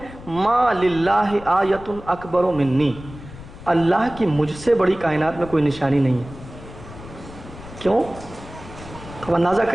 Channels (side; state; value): left; noise; rumble, 16 dB below the sound